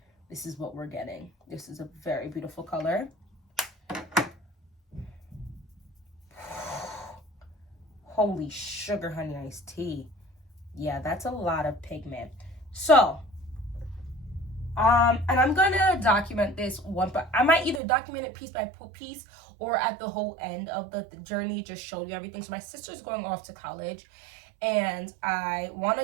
what we're getting. This is a very beautiful color. Holy sugar honey iced tea. Yeah, that's a lot of pigment. So, and I'm gonna document this one, but I might either document it piece by piece or at the whole end of the journey, just show you everything. So my sister's going off to college, and I want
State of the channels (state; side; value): drops out; left; at 17.8 s